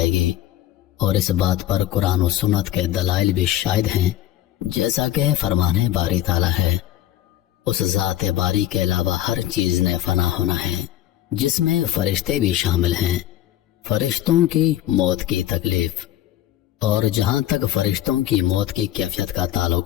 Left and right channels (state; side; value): quieter; right; 13.2 dB